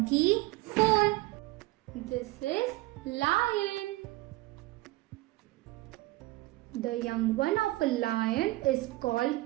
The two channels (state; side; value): quieter; left; 19.8 dB